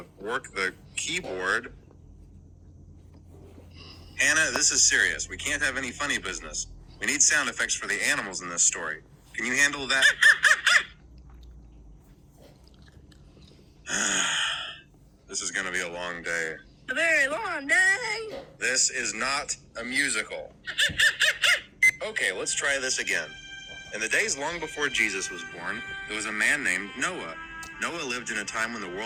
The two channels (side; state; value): both; identical; correlation 1.00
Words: work the keyboard. Hannah, this is serious. We can't have any funny business. We need sound effects for the animals in this story. Can you handle that? This is gonna be a long day. A very long day. This is not a musical. Okay, let's try this again. In the days long before Jesus was born, there was a man named Noah. Noah lived in a time when the